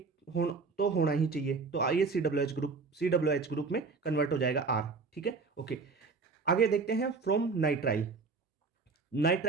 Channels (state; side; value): quieter; left; 4.4 dB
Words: हो तो होना ही चाहिए, तो ये COOH ग्रुप में कन्वर्ट हो जाएगा R। ठीक है, ओके, आगे देखते हैं फ्रॉम नाइट्राइल।